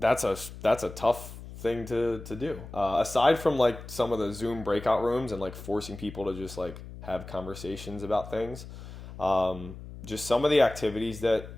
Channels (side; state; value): left; noise; hum, 13 dB below the sound